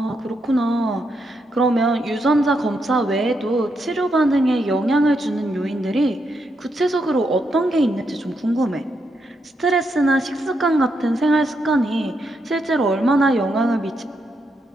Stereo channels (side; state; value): both; normal; correlation 0.81